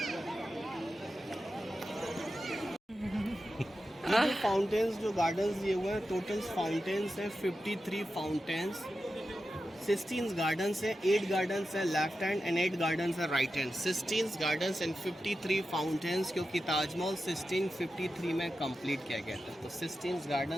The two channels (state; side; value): normal; both; correlation 0.91